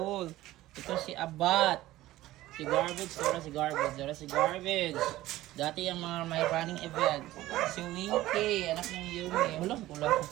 Ito si Abat, si Garbage, si Garbage. Dati yung mga may running event. Si Winky, anak ng Yumi. Hulang.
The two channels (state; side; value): quieter; left; 16.1 dB